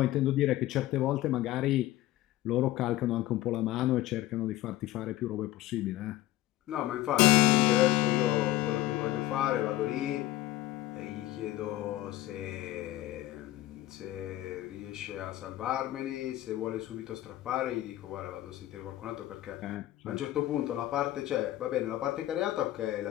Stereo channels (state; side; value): quieter; right; 15.6 dB